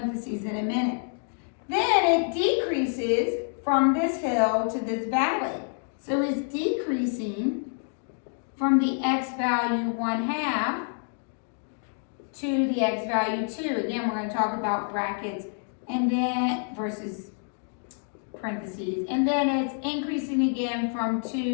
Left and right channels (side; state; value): right; silent; 57 dB below the other